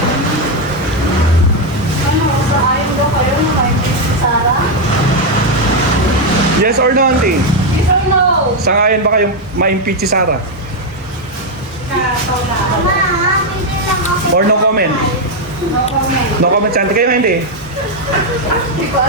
Saan daw kayo na-impeach si Sarah? Yes or no, auntie? Yes or no? Sangayon ba kayong ma-impeach si Sarah? Or no comment? No comment. No comment, auntie. Kayo hindi?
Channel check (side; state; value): both; normal; correlation 0.03